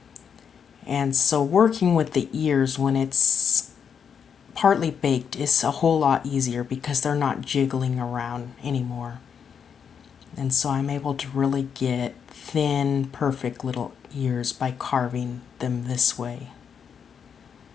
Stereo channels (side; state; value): right; quieter; 7.2 dB